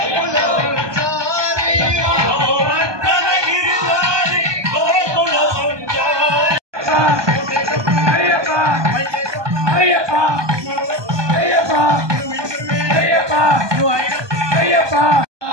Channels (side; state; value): left; late; 1.2 ms